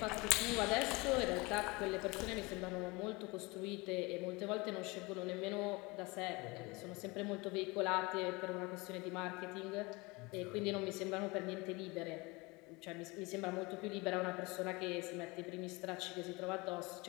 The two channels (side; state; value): right; quieter; 25.1 dB